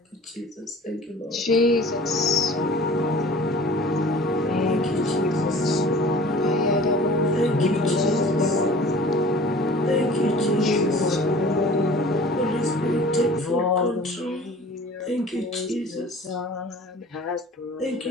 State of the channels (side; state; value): both; normal; correlation 0.45